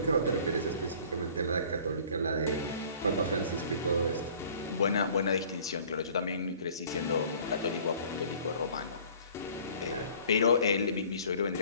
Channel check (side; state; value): both; inverted; correlation -0.51